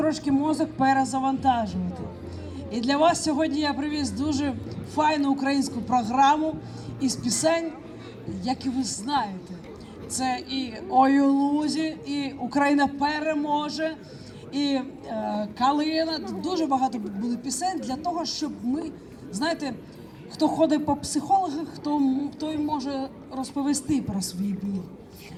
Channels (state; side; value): identical; both; correlation 1.00